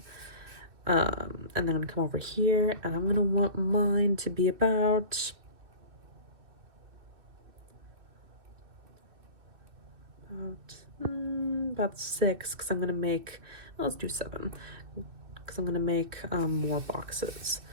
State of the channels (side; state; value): left; late; 2.7 ms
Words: And then I'm going to come over here, and I'm going to want mine to be about about 6, because I'm going to make, let's do 7, because I'm going to make more boxes.